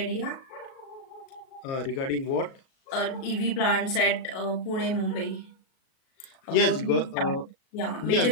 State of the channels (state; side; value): late; right; 37 ms